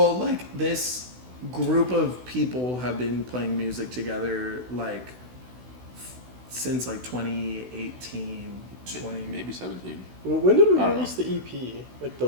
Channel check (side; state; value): left; late; 16 ms